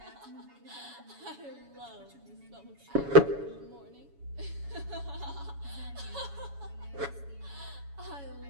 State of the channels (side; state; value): left; late; 7.1 ms